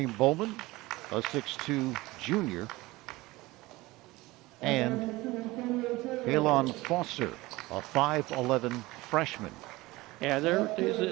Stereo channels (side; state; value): left; quieter; 20.3 dB